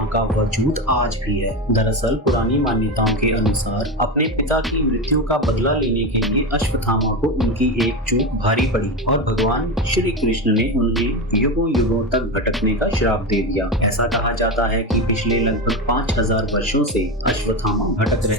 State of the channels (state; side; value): normal; both; correlation 0.18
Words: का वजूद आज भी है। दरअसल पुरानी मान्यताओं के अनुसार अपने पिता की मृत्यु का बदला लेने के लिए अश्वत्थामा को उनकी एक चूक भारी पड़ी और भगवान श्री कृष्ण ने उन्हें युगों युगों तक भटकने का श्राप दे दिया। ऐसा कहा जाता है कि पिछले लगभग 5000 वर्षों से अश्वत्थामा भटक